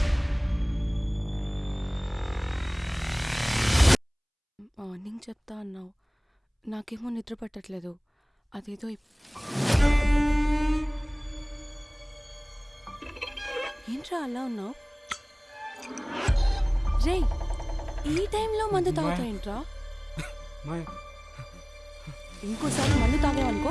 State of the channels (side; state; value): both; identical; correlation 1.00